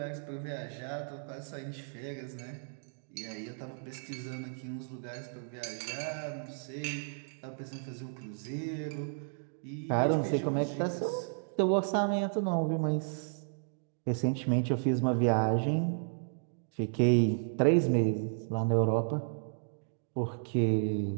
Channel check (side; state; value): left; silent; digital silence